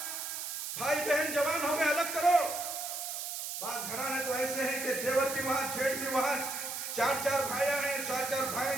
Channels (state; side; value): noise; right; hiss, 5 dB below the sound